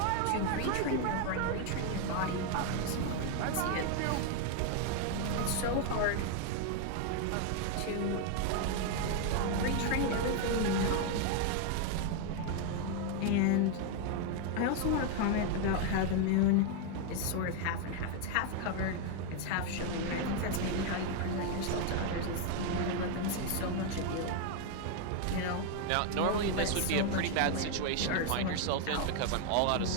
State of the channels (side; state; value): both; different; correlation 0.01